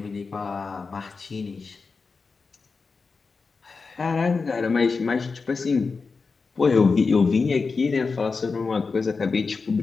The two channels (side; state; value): right; quieter; 4.6 dB